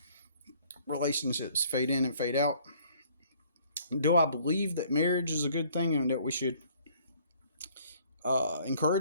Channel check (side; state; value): both; inverted; correlation -0.59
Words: relationships fade in and fade out. Do I believe that marriage is a good thing and that we should